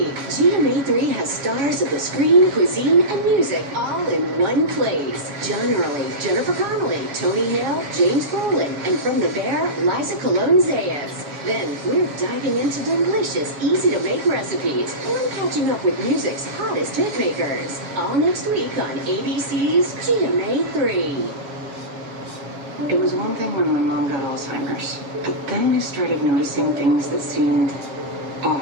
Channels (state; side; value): late; left; 7.2 ms